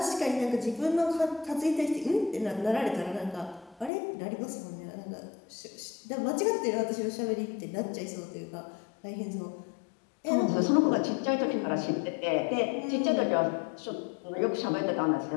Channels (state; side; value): drops out; right; at 3.9 s